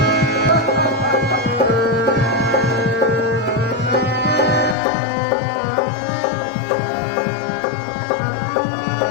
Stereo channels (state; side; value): drops out; right; at 4.8 s